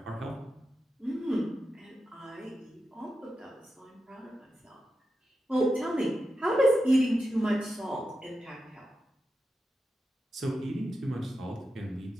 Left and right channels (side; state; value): both; normal; correlation 0.89